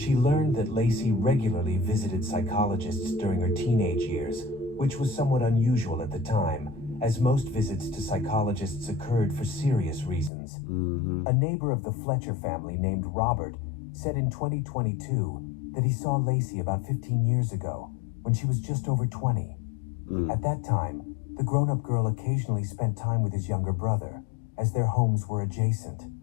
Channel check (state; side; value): drops out; right; at 10.3 s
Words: learned that Lacey regularly visited psychologists during her teenage years, which was somewhat unusual at the time, as most visits to psychologists occurred for serious reasons. A neighbor of the Fletcher family named Robert said in 2022 that he saw Lacey about 15 years ago, when she was just over 20. At that time, the grown-up girl occasionally spent time with his younger brother, as their homes were adjacent.